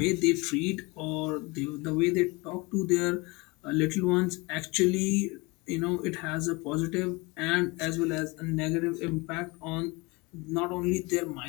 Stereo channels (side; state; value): right; quieter; 25.6 dB